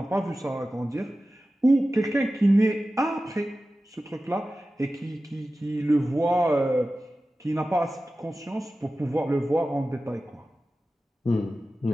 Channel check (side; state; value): both; normal; correlation 0.95